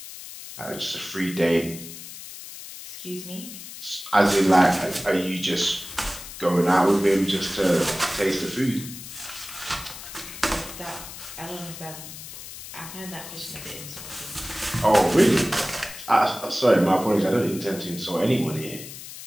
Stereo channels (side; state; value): left; noise; hiss, 12 dB below the sound